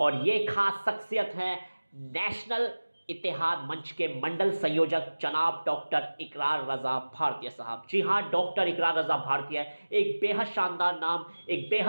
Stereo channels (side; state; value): both; inverted; correlation -1.00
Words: ये ख़ास शख्सियत है नेशनल इत्तेहाद मंच के मंडल संयोजक जनाब डॉक्टर इकरार रज़ा भारतीय साहब। जी हाँ, डॉक्टर इकरार रज़ा भारतीय एक बेहद शानदार नाम, एक